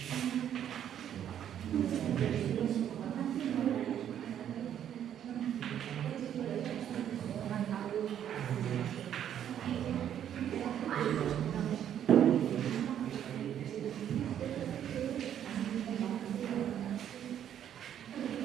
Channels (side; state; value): left; quieter; 10.0 dB